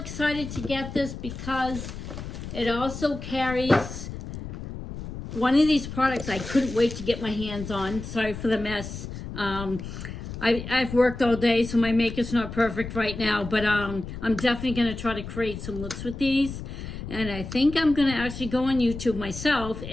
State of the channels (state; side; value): noise; left; rumble, 9 dB below the sound